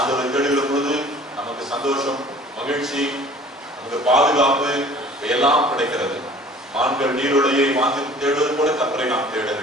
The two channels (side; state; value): both; normal; correlation 0.49